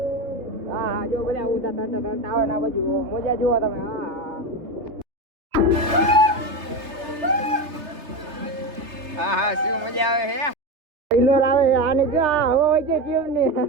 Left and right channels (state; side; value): late; left; 3.3 ms